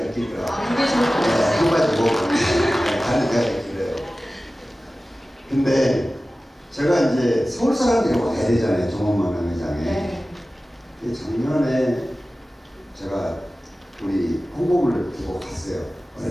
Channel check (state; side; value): normal; both; correlation 0.96